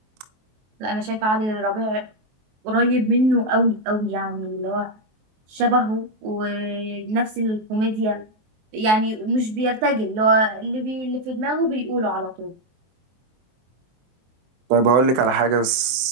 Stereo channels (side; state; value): left; late; 23 ms